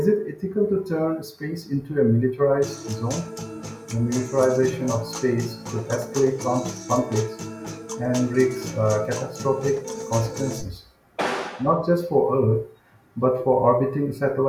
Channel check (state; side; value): identical; both; correlation 1.00